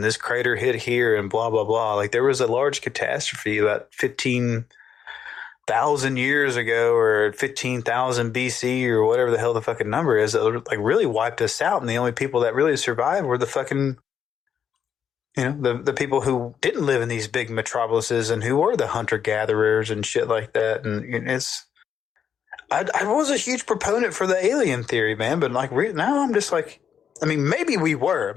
this crater hit here and blah, blah, blah. Like there was a large catastrophe about 15,000 years ago or 15,000 BC or whatever the hell the fucking number is, that like really wiped us out. And the only people that really survived were the fucking, the people who didn't live in these big metropolises and who were the hunter gatherers and shit like that. And I was a huge proponent for the alien theory, man, but like now I'm just like, maybe we were.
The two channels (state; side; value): quieter; right; 8.0 dB